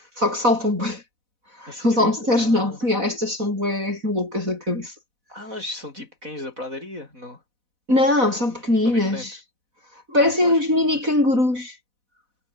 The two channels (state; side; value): late; left; 4.1 ms